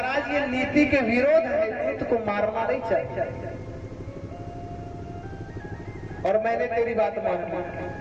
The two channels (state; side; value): identical; both; correlation 1.00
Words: ये नीति के विरोध है, दूत को मारना नहीं चाहिए। और मैंने तेरी बात मान ली,